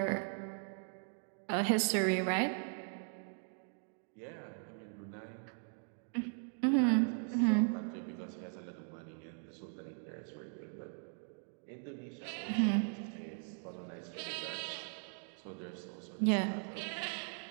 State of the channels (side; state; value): left; silent; 52 dB below the other